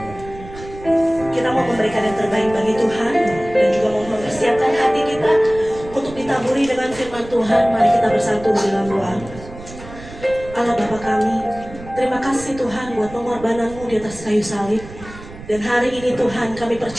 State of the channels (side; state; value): right; noise; rumble, 16 dB below the sound